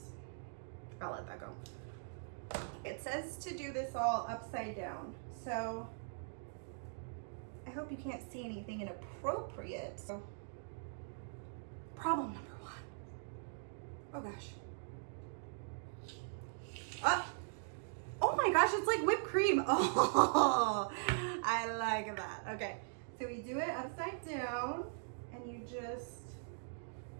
I'll let that go. It says to do this all upside down, so I hope you can't see anything inappropriate. So, problem number 1. Oh gosh. Oh my gosh, it's like whipped cream. Oh, I like that. Okay, so we do it upside down, and you just,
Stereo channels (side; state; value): left; silent; digital silence